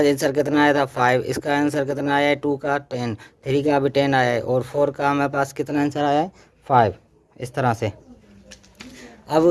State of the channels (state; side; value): identical; both; correlation 1.00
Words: कितना आया था 5, इसका आंसर कितना आया है 2 का 10, 3 का भी 10 आया है और 4 का हमारे पास कितना आंसर आया है 5, इस तरह से। अब